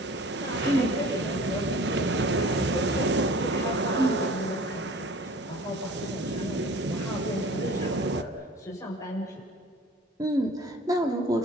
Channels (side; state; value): both; normal; correlation 0.45